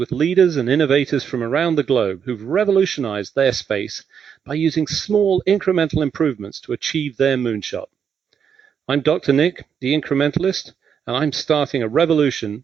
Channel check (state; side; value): quieter; left; 7.5 dB